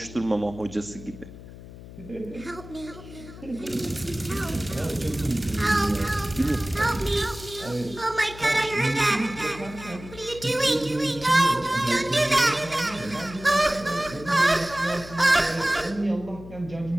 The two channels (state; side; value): noise; left; hum, 15 dB below the sound